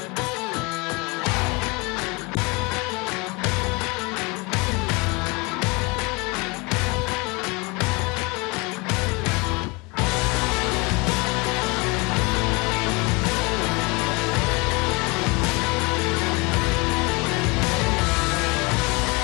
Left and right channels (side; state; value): right; quieter; 27.4 dB